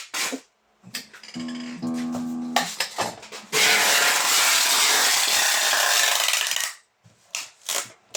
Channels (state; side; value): identical; both; correlation 1.00